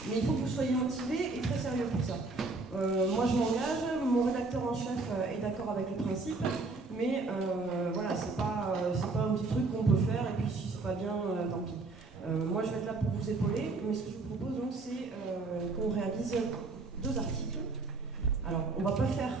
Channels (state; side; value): quieter; left; 3.6 dB